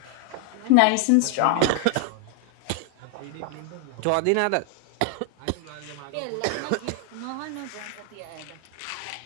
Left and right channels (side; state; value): both; different; correlation 0.00